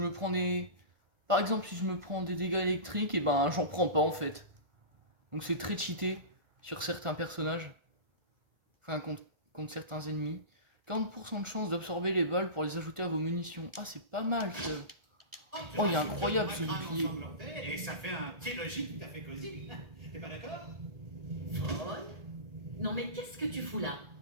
prends des... Par exemple, si je me prends des dégâts électriques, et ben j'en prends pas en fait. Donc c'est très cheaté sur certains personnages. Enfin, contre certains ennemis. 40% de chance d'absorber les balles pour les ajouter à vos munitions. Ah, c'est pas mal ça. Oh, il est incroyable ce bouclier. Et ça fait un petit logis tout à fait cosy. T'es pas d'accord? Paul? Non mais qu'est-ce que tu fous là?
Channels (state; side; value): late; left; 1.4 ms